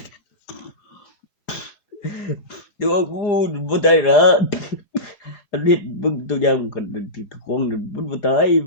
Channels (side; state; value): right; late; 4.9 ms